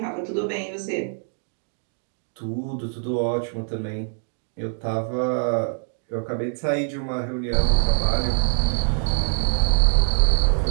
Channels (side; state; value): left; silent; 63 dB below the other